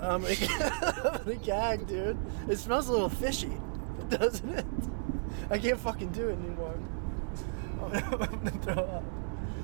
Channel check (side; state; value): left; silent; 55 dB below the other